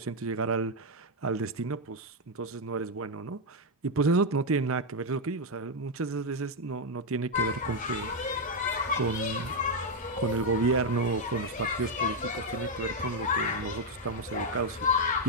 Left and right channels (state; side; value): normal; both; correlation 0.02